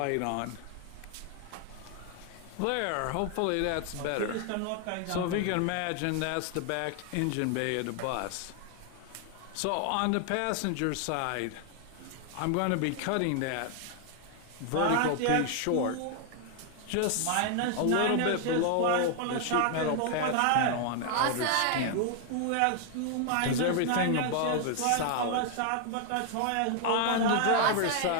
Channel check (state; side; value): different; both; correlation 0.00